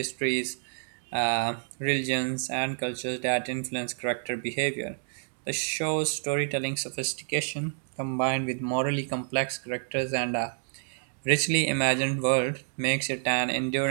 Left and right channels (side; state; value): left; silent; digital silence